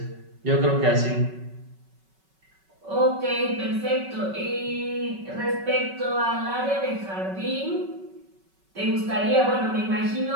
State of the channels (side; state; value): left; late; 5.3 ms